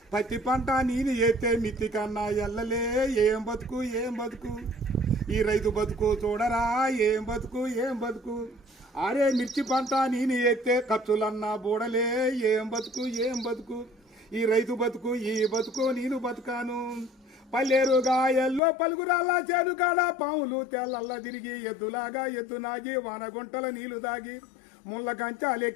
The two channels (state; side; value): drops out; right; at 18.6 s